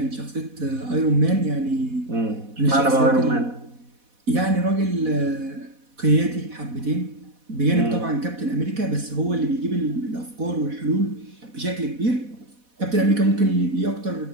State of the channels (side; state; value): left; late; 4.1 ms